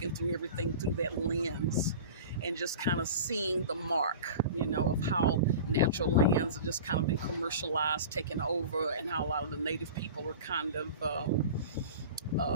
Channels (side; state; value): both; inverted; correlation -0.36